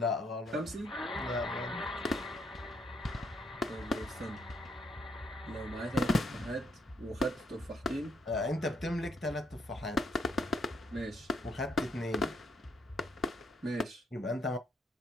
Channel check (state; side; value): normal; both; correlation 0.73